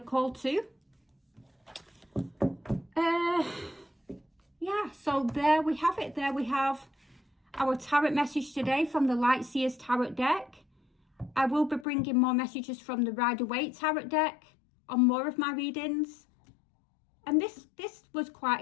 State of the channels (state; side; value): drops out; right; at 11.9 s